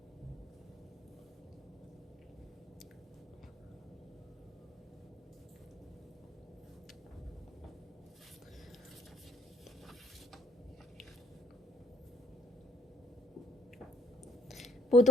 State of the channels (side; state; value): both; normal; correlation 0.63